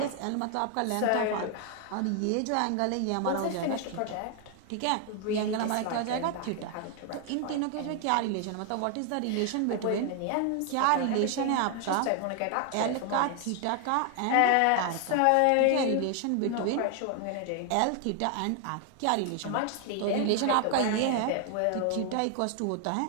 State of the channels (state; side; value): different; both; correlation 0.00